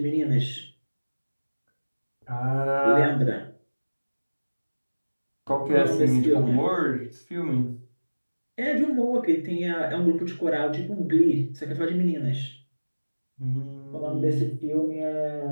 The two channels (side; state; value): both; inverted; correlation -1.00